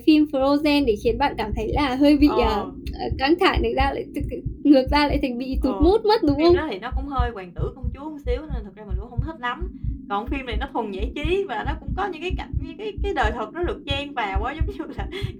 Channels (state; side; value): identical; both; correlation 1.00